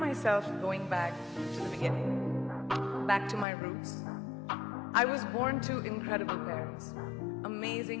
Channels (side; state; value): right; drops out; at 3.5 s